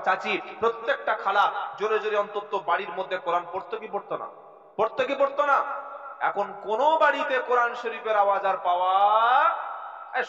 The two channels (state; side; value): identical; both; correlation 1.00